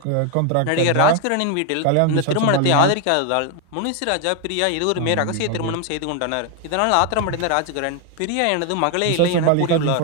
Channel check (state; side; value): different; both; correlation 0.01